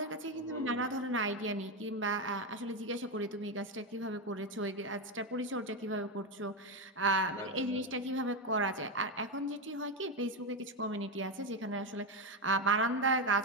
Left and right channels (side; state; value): both; normal; correlation 0.10